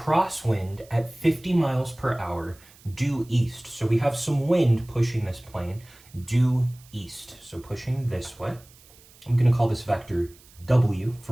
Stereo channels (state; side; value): noise; right; hiss, 25 dB below the sound